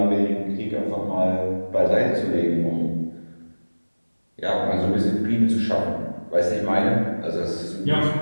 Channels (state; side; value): inverted; both; correlation -1.00